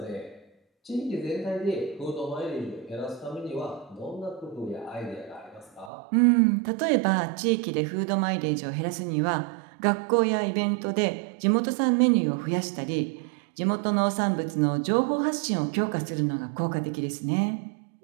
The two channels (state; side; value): drops out; left; at 5.9 s